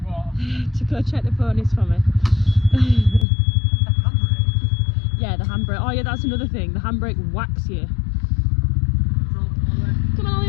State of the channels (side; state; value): right; drops out; at 3.2 s